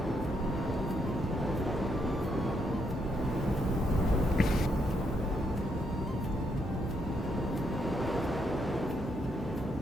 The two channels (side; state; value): both; normal; correlation 0.77